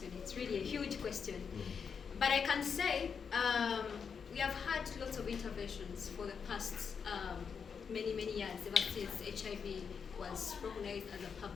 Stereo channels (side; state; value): right; quieter; 6.3 dB